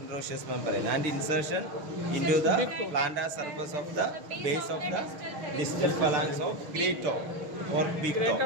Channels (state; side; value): late; left; 6.4 ms